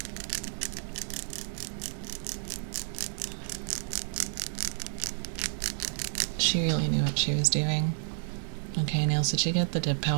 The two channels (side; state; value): left; silent; 57 dB below the other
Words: She really knew what she was doing. Okay, Nails, did you get the dip